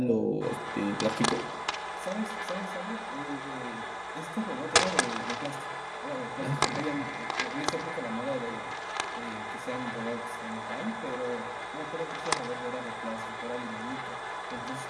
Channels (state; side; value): identical; both; correlation 1.00